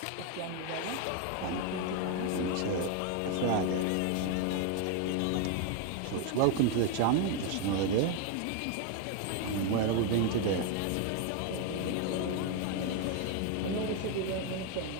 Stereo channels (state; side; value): different; both; correlation 0.01